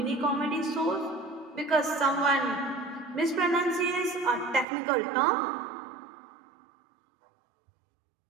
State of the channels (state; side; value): drops out; left; at 4.7 s